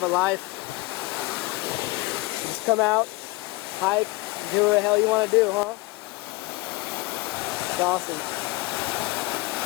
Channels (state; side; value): quieter; right; 22.4 dB